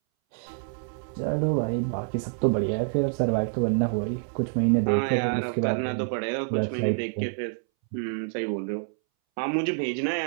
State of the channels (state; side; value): silent; left; 60 dB below the other